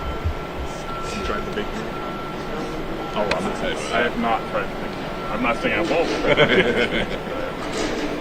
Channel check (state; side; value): identical; both; correlation 1.00